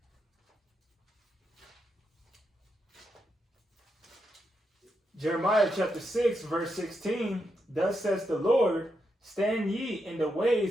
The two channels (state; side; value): normal; both; correlation 0.84